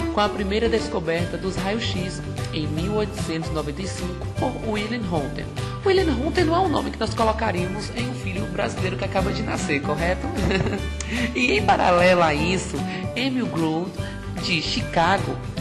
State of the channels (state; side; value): identical; both; correlation 1.00